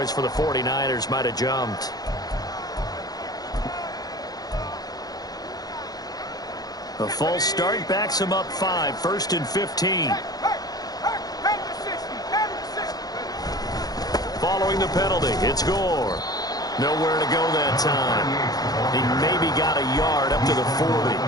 for the 49ers might have jumped. A false start backs him up 5, 1st and 15. Following the penalty, it's Gore. Nowhere to go that time. He maybe got a yard up to the 40.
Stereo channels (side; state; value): right; late; 0.19 ms